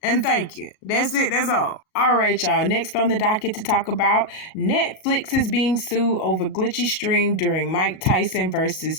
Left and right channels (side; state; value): right; late; 37 ms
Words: And thank you. That's it. That's all. All right, y'all. Next on the docket to talk about, Netflix is being sued over glitchy stream during Mike Tyson versus